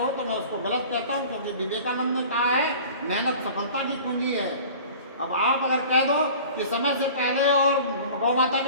तो मैं उसको गलत कहता हूँ, क्योंकि विवेकानंद ने कहा है मेहनत सफलता की कुंजी है। अब आप अगर कह दो कि समय से पहले और गौ माता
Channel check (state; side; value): inverted; both; correlation -0.42